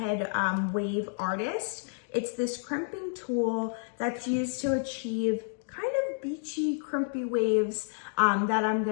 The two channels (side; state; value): right; silent; digital silence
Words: Wave Artist. It's this crimping tool that's used to achieve kind of beachy, crimpy waves that I'm